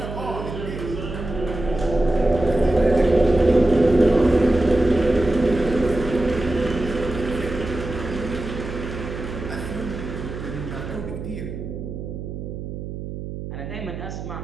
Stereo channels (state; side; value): noise; right; hum, 8 dB below the sound